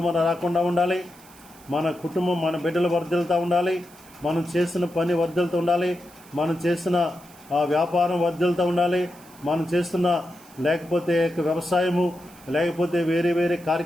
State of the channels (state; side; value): noise; right; hiss, 24 dB below the sound